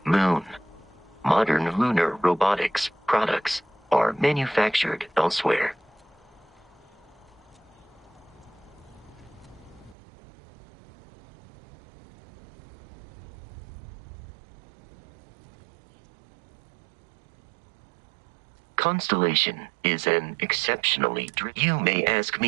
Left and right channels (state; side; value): drops out; left; at 10.0 s